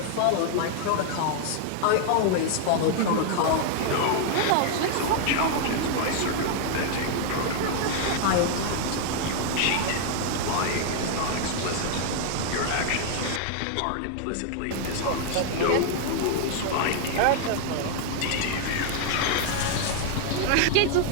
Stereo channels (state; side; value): different; both; correlation 0.00